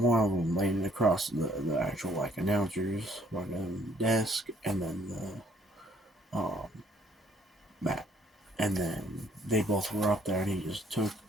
of them laying across the actual like announcers like desk, and then the mat, and then they both were up there, and he just took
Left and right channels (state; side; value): normal; both; correlation 0.63